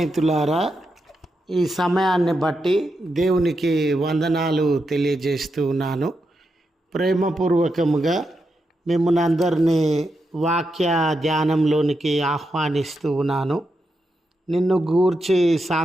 ఈ సమయాన్ని బట్టి దేవునికి వందనాలు తెలియజేస్తూ ఉన్నాను. ప్రేమపూర్వకముగా మిమ్మల్ని అందరినీ వాక్య ధ్యానంలోనికి ఆహ్వానిస్తూ ఉన్నాను. నిన్ను గూర్చి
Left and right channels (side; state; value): both; normal; correlation 0.85